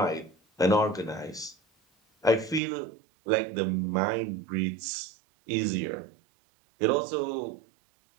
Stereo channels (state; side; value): drops out; left; at 2.6 s